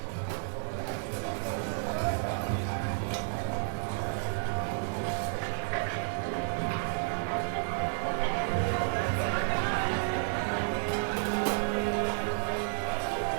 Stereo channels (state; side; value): silent; left; digital silence